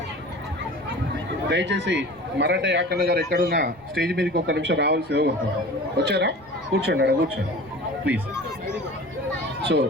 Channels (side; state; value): right; noise; rumble, 26 dB below the sound